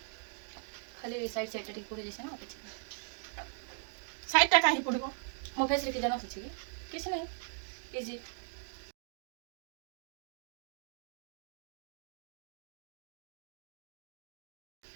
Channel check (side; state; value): left; silent; 52 dB below the other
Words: खाली साइड साइड टिक पुरी जैसे ना किछि साइड टा काहे पड़िबो मो फेस रे के जाना छी किछि नहीं इजी